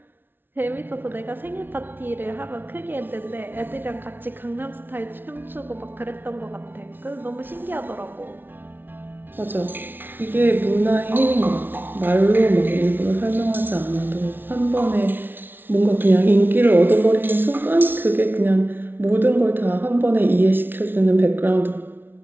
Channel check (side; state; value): left; late; 0.10 ms